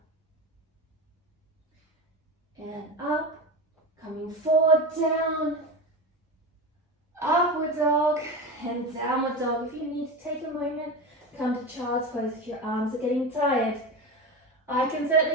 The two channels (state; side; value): normal; both; correlation 0.23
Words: And up, coming forward, down, upward dog, and downward dog. If you need to take a moment, come to child's pose if your arms are getting tired. I can